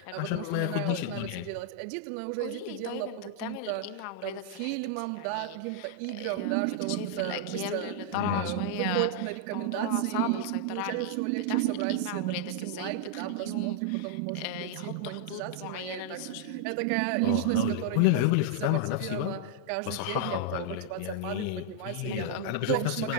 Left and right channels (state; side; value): different; both; correlation -0.01